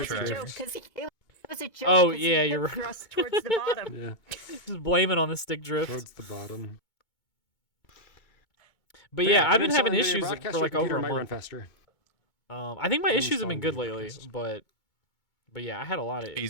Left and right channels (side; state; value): right; late; 2.2 ms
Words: a Drift. joke because it was a joke. Oh, 'cause he yeah, hip you're right. thrust towards the bottom. Yeah, Just blame it on the stick drift. towards the bottom. But yeah, I've been uninstall having NVIDIA issues Broadcast, for your like computer over a might run month. faster. I think my issues have been good Uninstall lately, NVIDIA but yeah, I had a lot of